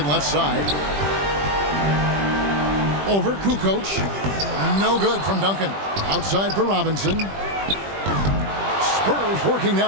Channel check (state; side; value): late; left; 20 ms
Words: left side. Over Kukoc. No good from Duncan. Outside for Robinson. Spurs working